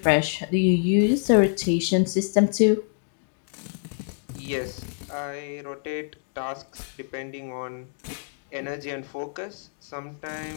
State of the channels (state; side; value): silent; right; 61 dB below the other